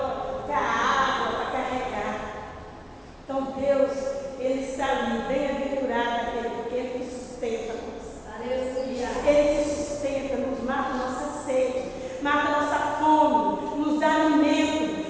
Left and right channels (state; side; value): identical; both; correlation 1.00